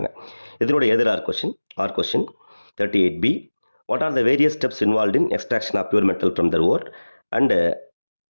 இதனுடைய எதிரார் கொஸ்டின் or question 38B what are the various steps involved in extraction of pure metal from the ore and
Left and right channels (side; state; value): both; inverted; correlation -1.00